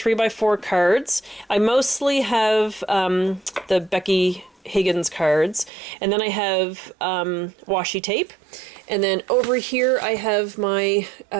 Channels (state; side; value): drops out; left; at 5.7 s